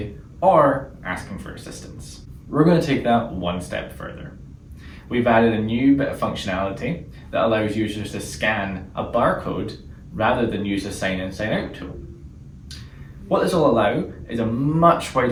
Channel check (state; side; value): identical; both; correlation 1.00